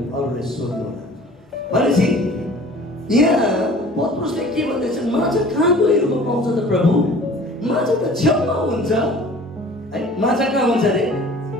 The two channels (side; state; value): both; normal; correlation 0.47